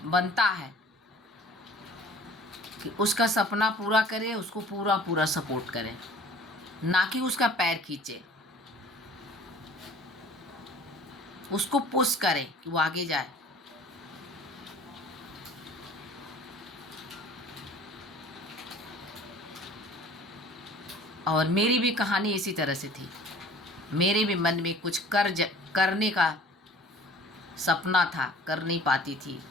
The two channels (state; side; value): normal; both; correlation 0.48